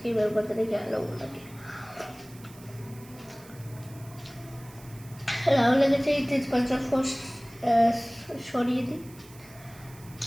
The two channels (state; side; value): noise; right; hiss, 22 dB below the sound